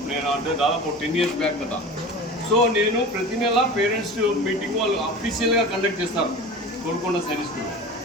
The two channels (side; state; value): both; normal; correlation 0.34